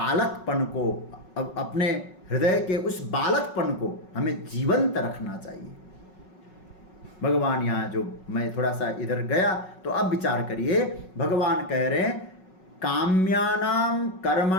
को, अपने हृदय के उस बालकपन को हमें जीवंत रखना चाहिए। भगवान यहाँ जो, मैं थोड़ा सा इधर गया तो अब विचार करिए, भगवान कह रहे हैं, काम्यानाम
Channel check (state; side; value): late; right; 5.4 ms